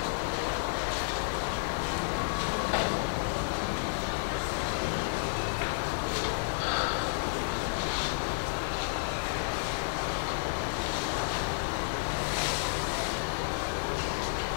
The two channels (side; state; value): right; silent; digital silence